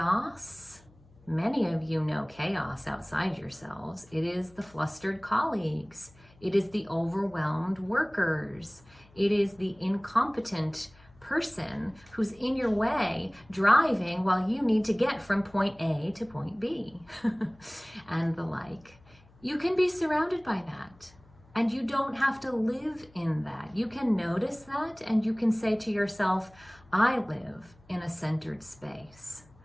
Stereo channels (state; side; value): noise; left; hum, 27 dB below the sound